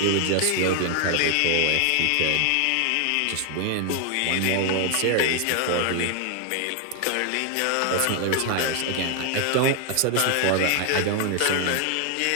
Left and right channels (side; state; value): both; different; correlation 0.00